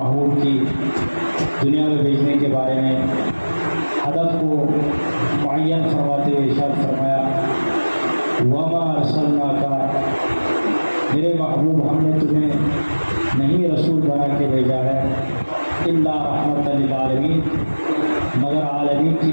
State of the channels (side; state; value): both; inverted; correlation -1.00